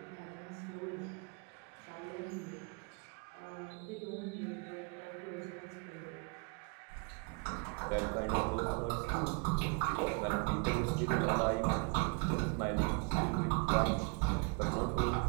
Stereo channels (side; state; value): left; quieter; 33.1 dB